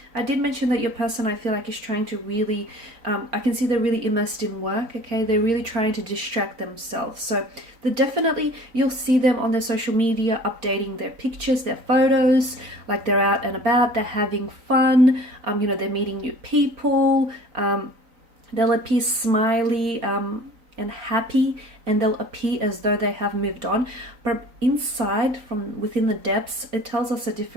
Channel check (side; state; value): left; late; 3.9 ms